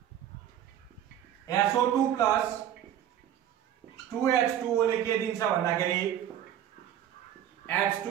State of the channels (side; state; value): left; quieter; 10.7 dB